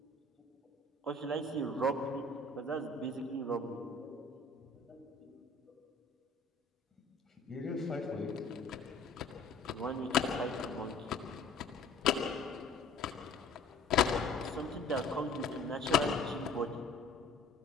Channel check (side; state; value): right; quieter; 3.3 dB